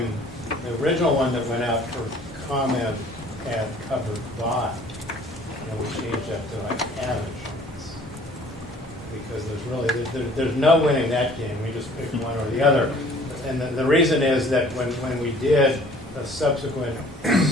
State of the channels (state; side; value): normal; both; correlation 0.53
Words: the original one that went out for comment had covered by. And we changed that to like have insurance. Because there's no winning that game, we just picked one or the other. And the reason is that when we did a subsequent